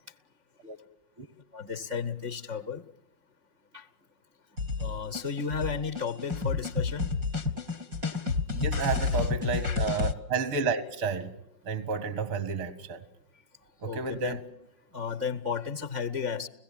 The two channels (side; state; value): left; late; 5.5 ms